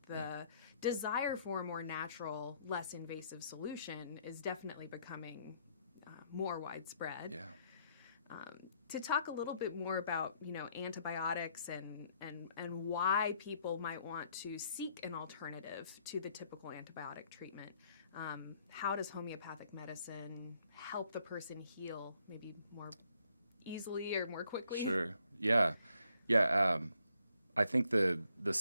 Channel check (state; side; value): inverted; both; correlation -0.71